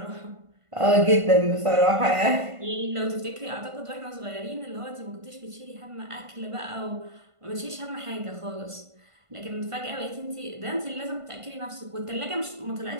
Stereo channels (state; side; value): late; left; 1.5 ms